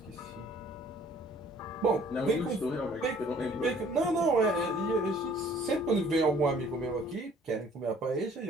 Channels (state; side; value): normal; both; correlation 0.56